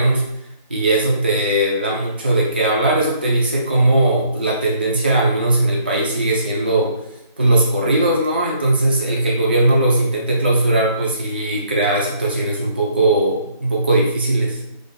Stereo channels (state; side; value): inverted; both; correlation -0.65